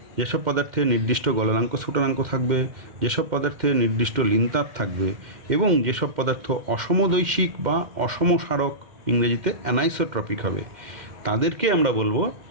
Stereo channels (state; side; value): late; left; 2.1 ms